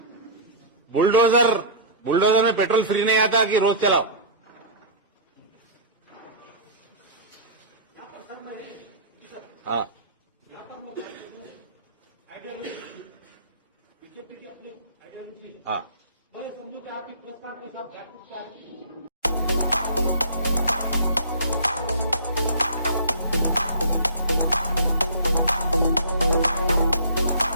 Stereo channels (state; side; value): inverted; both; correlation -0.38